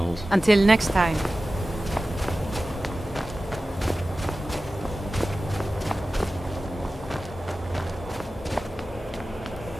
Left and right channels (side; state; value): both; normal; correlation 0.95